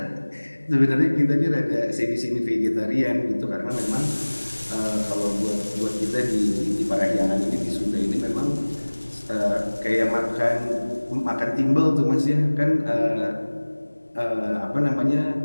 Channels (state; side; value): inverted; both; correlation -1.00